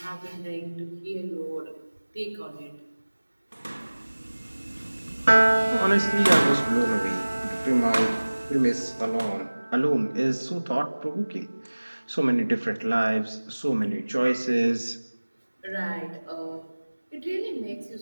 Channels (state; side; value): inverted; both; correlation -1.00